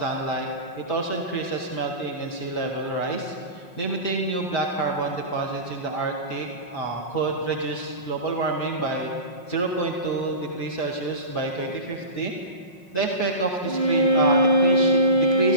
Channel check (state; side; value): late; right; 5.5 ms